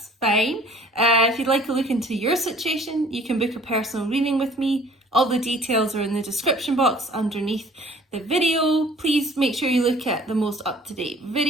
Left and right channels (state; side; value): normal; both; correlation 0.53